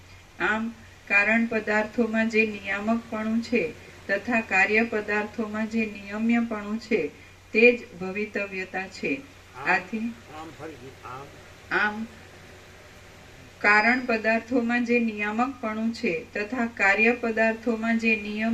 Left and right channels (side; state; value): both; identical; correlation 1.00